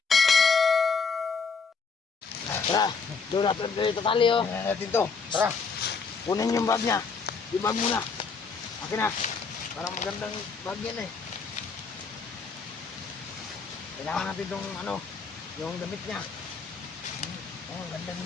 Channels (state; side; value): quieter; right; 5.1 dB